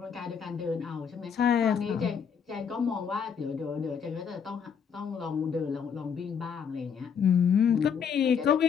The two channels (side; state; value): right; quieter; 7.1 dB